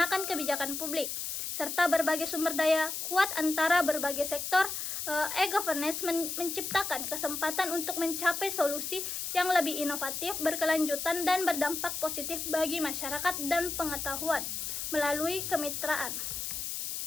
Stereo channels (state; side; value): noise; left; hiss, 4 dB below the sound